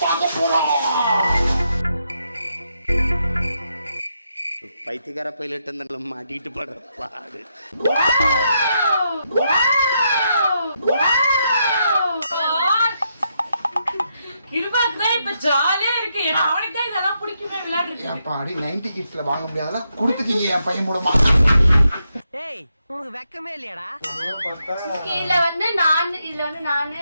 பார்க்க போறோம். பைத்தியக்கார பைலட் அந்த மாட்டிட்டு படுற பாடு. கிருபாக்கு இப்ப ஜாலியா இருக்கு. ஏன்னா அவனுக்கு தான் இதெல்லாம் பிடிக்குமே விளையாடுறது. ஏப்பாடி 90 கிட்ஸ்ல வாங்க முடியாதெல்லாம் கொடுத்துட்டீங்க என் பையன் மூலமா. டேய் உங்களுக்கு வெக்கமே இல்லையாடா? இதுல வந்து நானு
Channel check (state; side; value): inverted; both; correlation -0.81